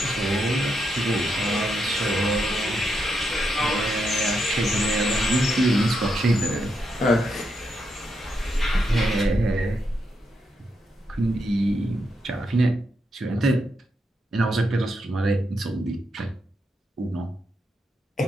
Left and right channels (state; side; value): normal; both; correlation 0.82